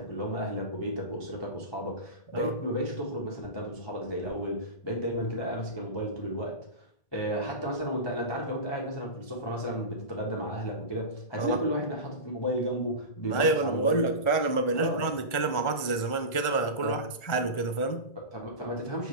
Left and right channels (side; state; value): right; late; 1.4 ms